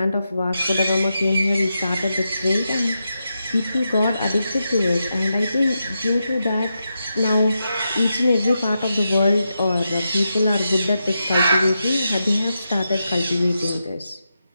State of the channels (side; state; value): both; inverted; correlation -0.87